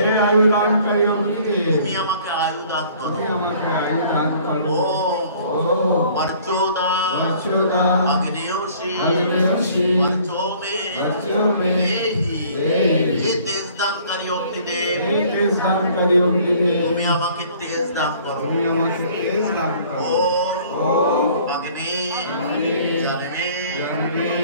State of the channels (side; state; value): both; inverted; correlation -0.55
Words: তুমি আমাকে আয়ুদান করো। ওম বর্চোদা অগ্নিয়োশী বর্চোমে দেহি। হে তেজদানকারী অগ্নিদেব, তুমি আমাকে তেজ দান করো। ওম অগ্নি জনমে